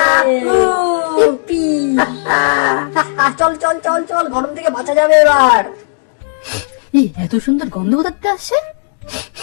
ইপ্পি! চল চল চল চল, গরম থেকে বাঁচা যাবে এবার। এই এত সুন্দর গন্ধ কোথাতে আসছে?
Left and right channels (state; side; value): silent; right; digital silence